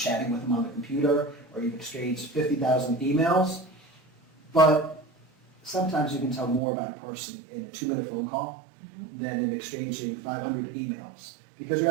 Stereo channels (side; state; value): left; drops out; at 6.6 s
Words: with them on the computer, or you've exchanged 50,000 emails, but sometimes you can tell more about a person in a 2-minute phone call than in exchanging 500 emails, because you